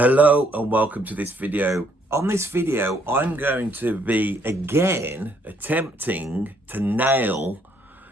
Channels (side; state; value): both; normal; correlation 0.68